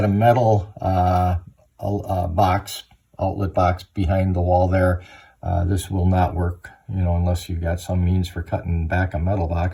a metal outlet box behind the wall there, this will not work, unless you've got some means for cutting back a metal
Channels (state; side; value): identical; both; correlation 1.00